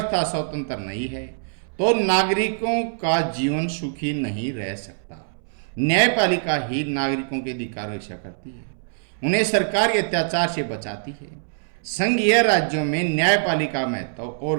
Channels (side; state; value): left; silent; 63 dB below the other